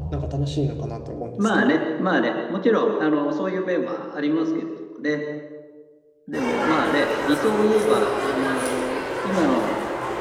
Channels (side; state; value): both; identical; correlation 1.00